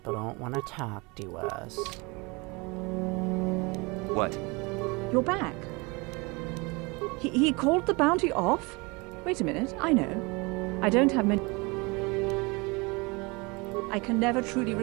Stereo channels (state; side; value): quieter; left; 27.0 dB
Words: don't want to talk to us. What? You're back. He called the bounty off? Wait a minute, I know. I don't have many... I can never truly